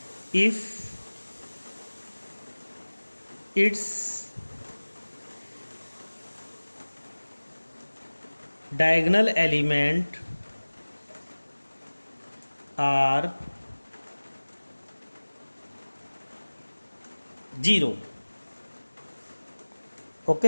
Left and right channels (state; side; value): inverted; both; correlation -1.00